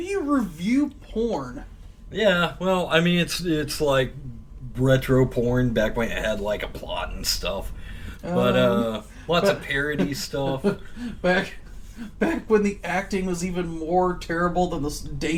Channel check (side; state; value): both; identical; correlation 1.00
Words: review porn? Yeah, well, I mean, it's like retro porn back when it had like a plot and stuff, but lots of parody stuff. back when the acting was even more terrible than the